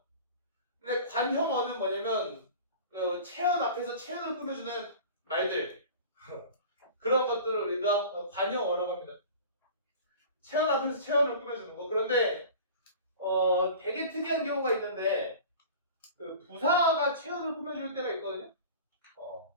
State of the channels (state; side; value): inverted; both; correlation -0.39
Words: 근데 관형어는 뭐냐면 체언 앞에서 체언을 꾸며주는 말들 그런 것들을 우리가 관형어라고 합니다. 체언 앞에서 체언을 꾸며주는 거. 그런데 되게 특이한 경우가 있는데 부사가 체언을 꾸며줄 때가 있거든요.